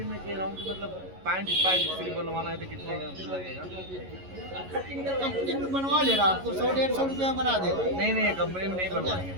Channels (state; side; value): late; left; 11 ms